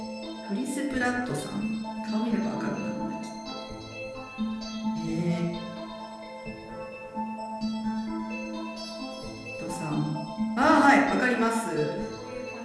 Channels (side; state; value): both; identical; correlation 1.00